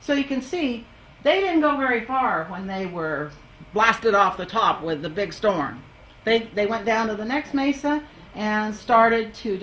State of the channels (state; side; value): identical; both; correlation 1.00